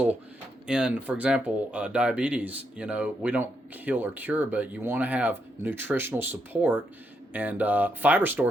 In, for example, diabetes, we don't heal or cure, but you want to have nutritional support, and Fiber Store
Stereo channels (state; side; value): normal; both; correlation 0.79